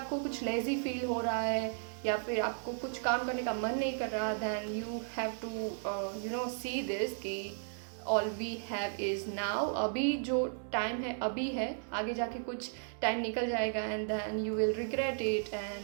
कुछ लेज़ी फील हो रहा है या फिर आपको कुछ काम करने का मन नहीं कर रहा, then you have to see this कि all we have is now. अभी जो टाइम है अभी है, आगे जाके कुछ टाइम निकल जाएगा and then you will regret it.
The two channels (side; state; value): left; silent; digital silence